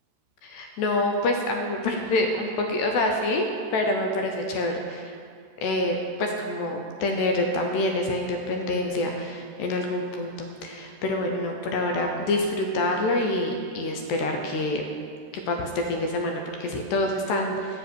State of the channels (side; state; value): right; late; 14 ms